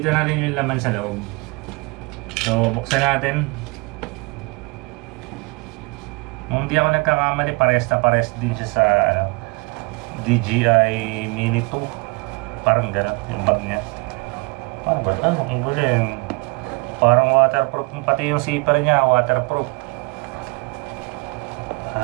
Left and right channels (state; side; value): quieter; left; 28.5 dB